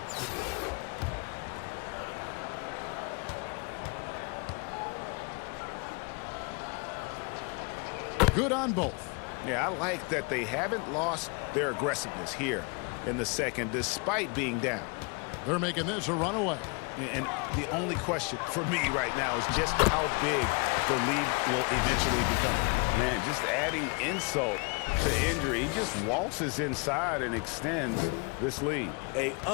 Good on both. Yeah, I like that they haven't lost their aggressiveness here in the second, despite being down. They're making this a runaway. And the only question for me right now is just how big the lead will eventually become. Man, just adding insult to injury, he just waltzes inside and extends this lead. An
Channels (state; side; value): quieter; right; 32.5 dB